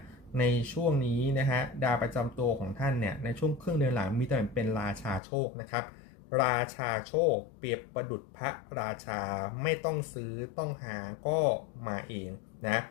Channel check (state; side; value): drops out; right; at 5.2 s